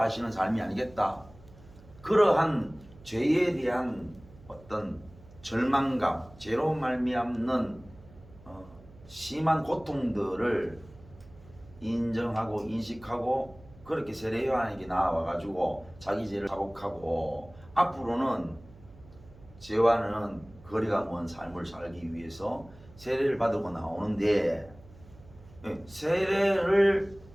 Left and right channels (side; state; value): right; noise; hum, 22 dB below the sound